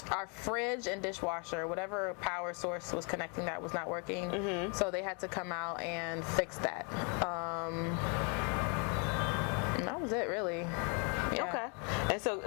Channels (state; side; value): quieter; right; 36.1 dB